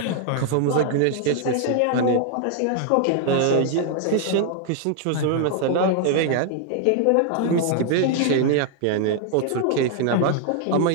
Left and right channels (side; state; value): both; different; correlation 0.00